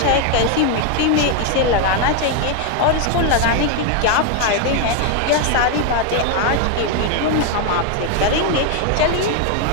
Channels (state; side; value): different; both; correlation 0.01